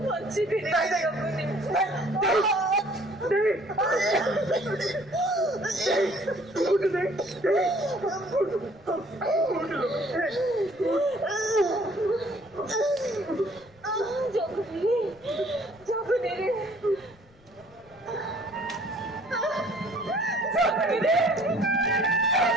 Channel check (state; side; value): noise; left; rumble, 29 dB below the sound